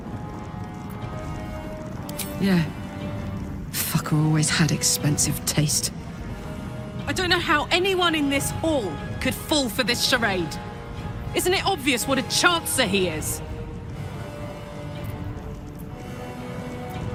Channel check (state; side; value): identical; both; correlation 1.00